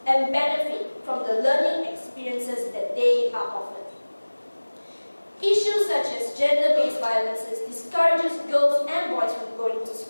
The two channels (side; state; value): both; inverted; correlation -1.00